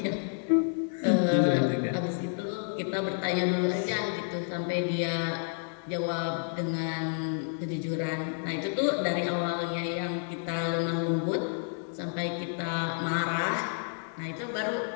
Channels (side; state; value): right; silent; digital silence